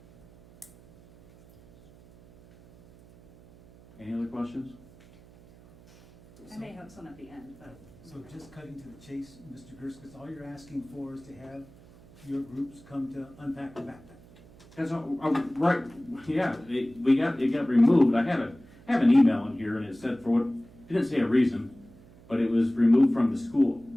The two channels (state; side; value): noise; right; hum, 24 dB below the sound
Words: Any other questions? I may have some at the end, but. So just cutting to the chase, Mr. Gerskis, all you're asking for is to have your groups come to unpack the backpack. That's right. Yeah, it got removed. I have an email in here, and it said for what it didn't say a reason, but it was removed from the